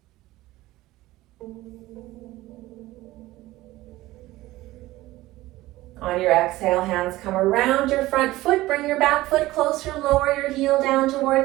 On your exhale, hands come around your front foot. Bring your back foot closer. Lower your heel down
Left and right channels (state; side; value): quieter; left; 17.6 dB